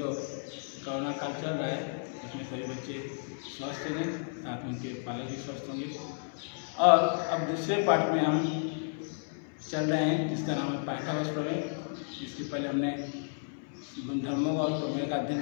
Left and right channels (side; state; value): right; silent; 56 dB below the other